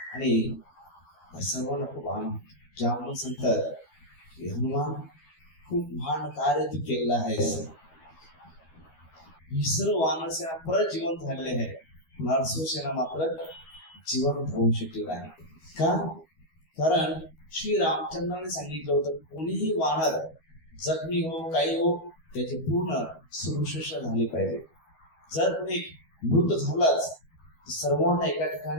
आणि सर्वांना खूप आनंद ज्यामुळे सांगतात की हनुमान खूप महान कार्य तू केलेलं आहे. ही सर्व वानर सेना परत जिवंत झालेले आहे, नरसू सेना मात्र जिवंत होऊ शकले नाही. का? कारण श्री रामचंद्राने सांगितलं होतं कोणीही वानर जखमी हो काही हो त्याची पूर्ण सुरक्षा झाली पाहिजे. जर कोणी मृत झालाच तर सर्वांना एका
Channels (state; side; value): late; right; 12 ms